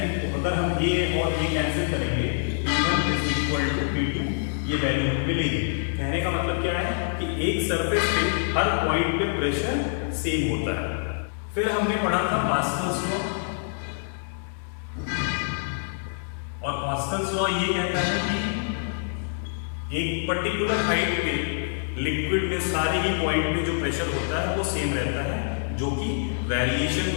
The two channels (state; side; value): silent; right; digital silence